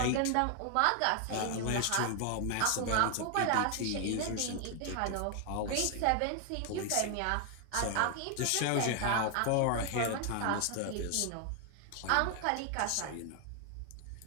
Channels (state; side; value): different; both; correlation 0.00